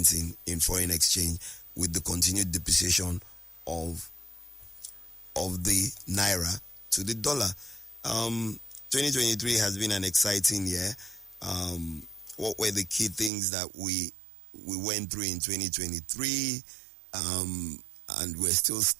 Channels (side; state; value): left; drops out; at 13.3 s